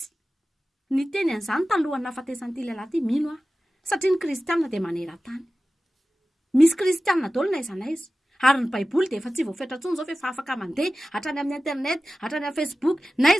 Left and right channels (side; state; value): both; normal; correlation 0.95